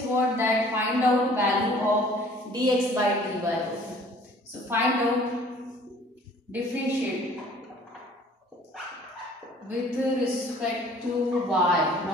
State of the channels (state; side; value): normal; both; correlation 0.53